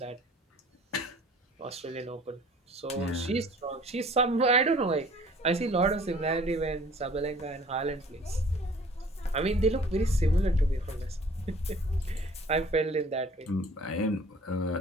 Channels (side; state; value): both; normal; correlation 0.51